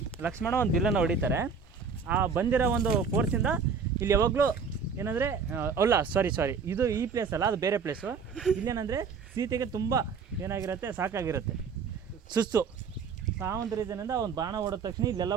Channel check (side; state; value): left; quieter; 5.7 dB